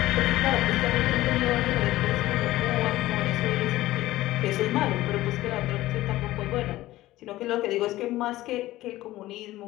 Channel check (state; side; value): quieter; right; 16.5 dB